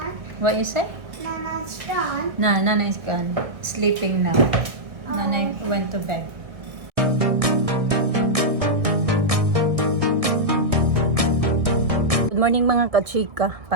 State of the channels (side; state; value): left; late; 1.6 ms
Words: What you say? Nana's gone. Nana is gone. Sleeping now. Nana went to bed. Good morning mga kachika.